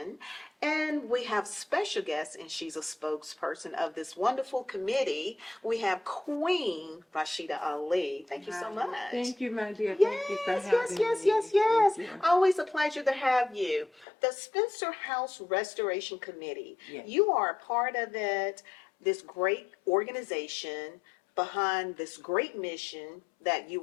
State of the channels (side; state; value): right; drops out; at 14.1 s